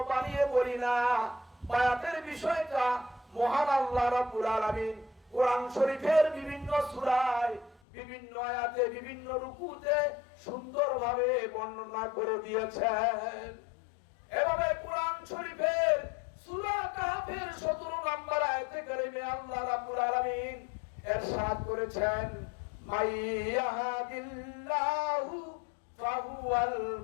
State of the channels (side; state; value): right; drops out; at 7.8 s